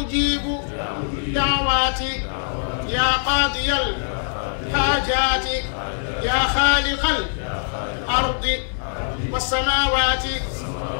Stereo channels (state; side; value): silent; right; 63 dB below the other